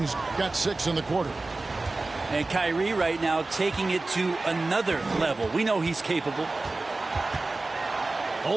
got 6 in the quarter. And Kyrie right now taking it to another level. We know he's capable.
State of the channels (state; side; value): quieter; left; 3.3 dB